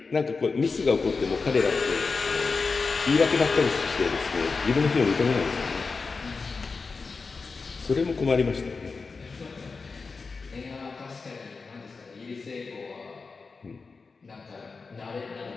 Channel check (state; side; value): quieter; right; 4.5 dB